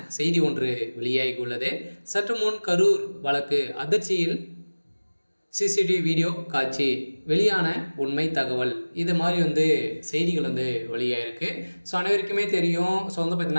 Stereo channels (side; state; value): both; inverted; correlation -1.00